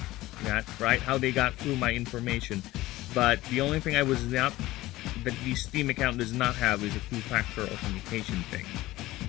that, right? How they got through my information. But the only thing I was not... that the Steam account does not have is a two-factor authentication thing.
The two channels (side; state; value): right; quieter; 17.6 dB